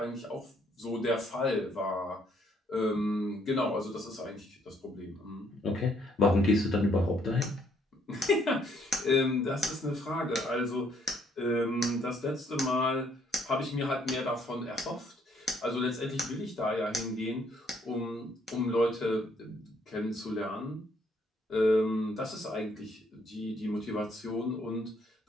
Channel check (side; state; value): both; normal; correlation 0.67